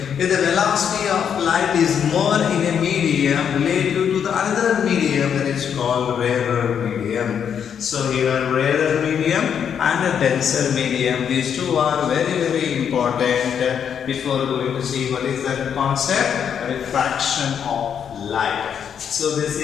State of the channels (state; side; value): quieter; right; 8.0 dB